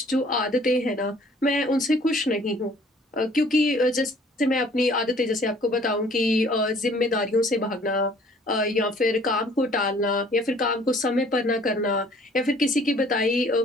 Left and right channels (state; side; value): normal; both; correlation 0.56